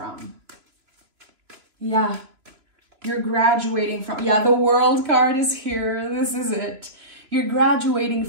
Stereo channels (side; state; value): left; late; 3.0 ms